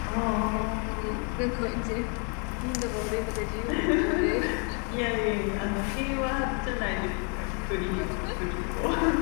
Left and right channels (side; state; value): right; quieter; 37.6 dB